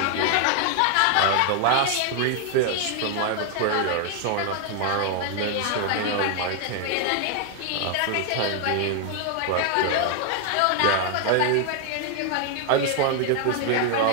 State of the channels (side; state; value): both; different; correlation 0.00